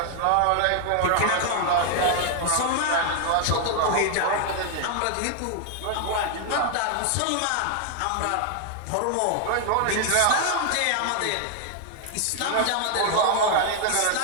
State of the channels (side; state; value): both; different; correlation 0.00